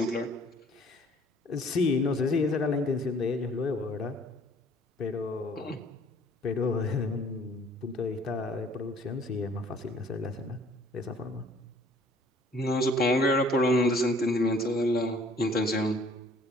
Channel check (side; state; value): both; normal; correlation 0.57